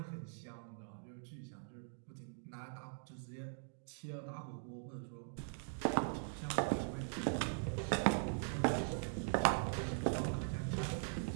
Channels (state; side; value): silent; left; digital silence